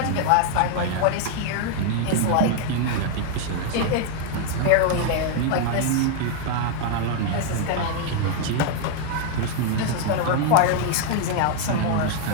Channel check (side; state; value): both; different; correlation 0.00